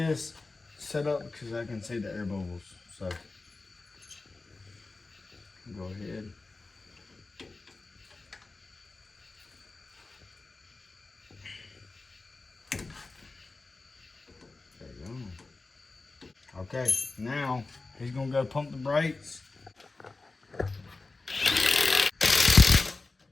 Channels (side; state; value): right; quieter; 3.5 dB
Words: setup because I can see the air bubbles. So go ahead. Okay, now he's gonna go pump the brakes.